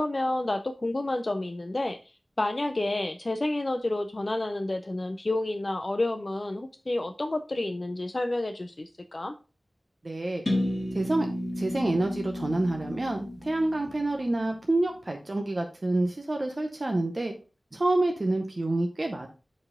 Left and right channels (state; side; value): normal; both; correlation 0.96